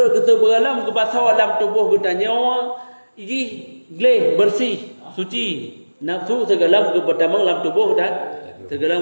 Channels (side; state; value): both; inverted; correlation -1.00